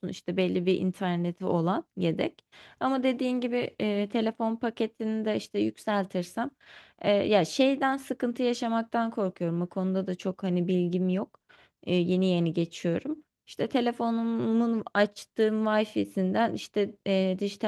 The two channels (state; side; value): identical; both; correlation 1.00